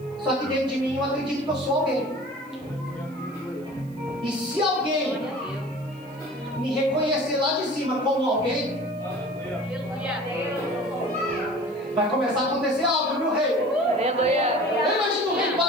Só que dentro de mim eu acredito que eu sou alguém. E se alguém me reconhecer lá de cima como alguém, vai começar a acontecer algo, viu, rei? Eu imagino o rei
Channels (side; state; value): right; noise; hiss, 29 dB below the sound